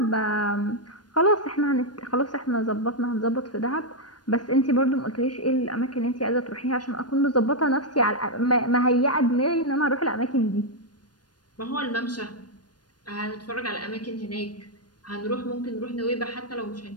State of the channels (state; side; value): late; right; 0.69 ms